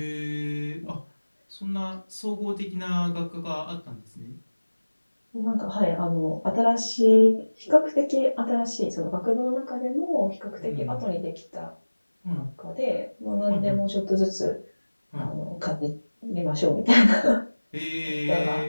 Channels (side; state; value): both; inverted; correlation -1.00